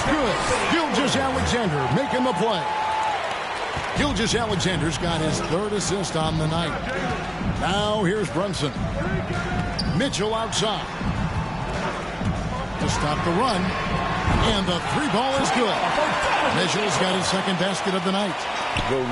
good. Gilgeous Alexander making the play. Gilgeous Alexander's got his 3rd assist on the night. Now here's Brunson. Mitchell outside. To stop the run. And the 3-ball is good. Mitchell's got his 2nd basket of the night. Go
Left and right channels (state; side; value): identical; both; correlation 1.00